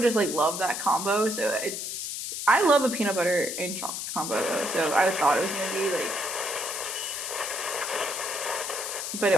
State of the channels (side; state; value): left; noise; hiss, 4 dB below the sound